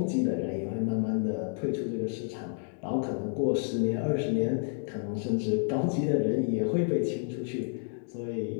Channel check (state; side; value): silent; right; 58 dB below the other